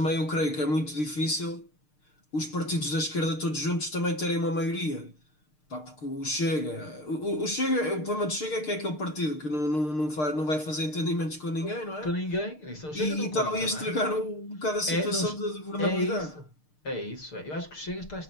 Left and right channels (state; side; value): late; right; 6.6 ms